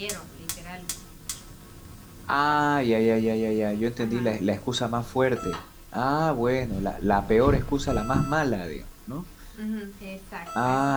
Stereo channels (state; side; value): identical; both; correlation 1.00